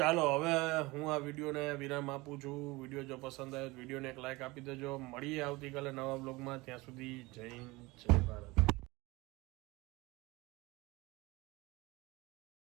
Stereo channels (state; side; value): quieter; left; 22.4 dB